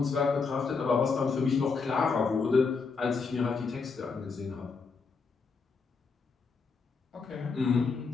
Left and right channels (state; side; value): quieter; right; 4.8 dB